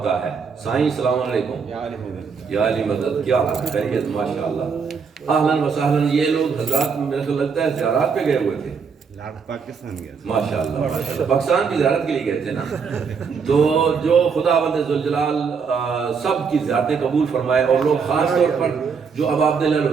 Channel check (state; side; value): quieter; left; 5.8 dB